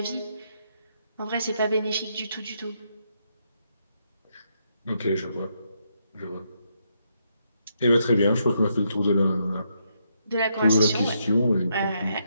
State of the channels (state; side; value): inverted; both; correlation -0.77